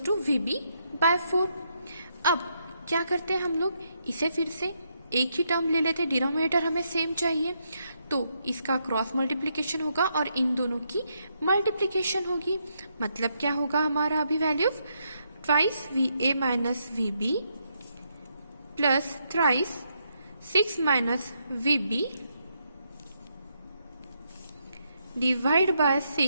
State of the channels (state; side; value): inverted; both; correlation -0.78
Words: to VB by 4। अब क्या करते हैं हम लोग, इसे फिर से एक ही टर्म ले लेते, डिनोमिनेटर हमें सेम चाहिए, तो इसका क्रॉस मल्टीप्लिकेशन होगा और इन दोनों की मल्टीप्लिकेशन होगी। मतलब क्या होगा हमारा अभी value, twice VA minus VB plus thrice 6 minus VB divide by